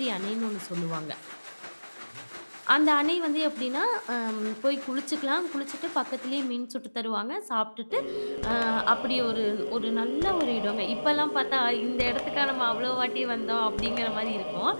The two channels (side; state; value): both; inverted; correlation -1.00